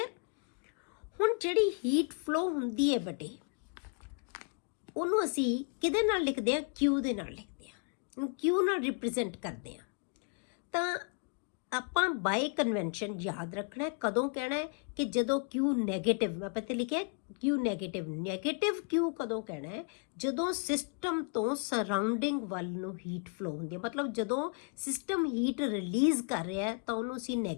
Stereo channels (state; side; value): quieter; right; 39.6 dB